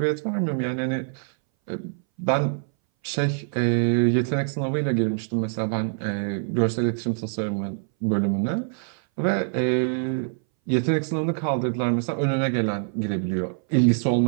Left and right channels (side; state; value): left; silent; 60 dB below the other